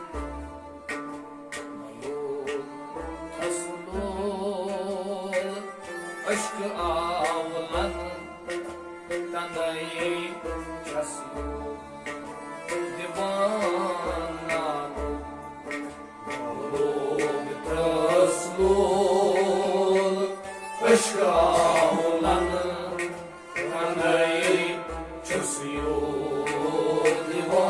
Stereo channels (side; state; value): both; identical; correlation 1.00